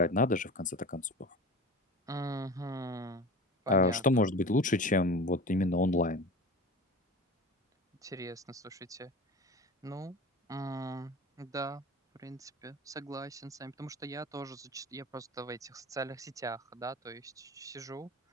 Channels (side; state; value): both; normal; correlation 0.34